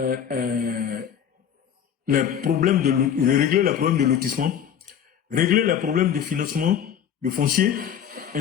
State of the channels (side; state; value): right; quieter; 8.8 dB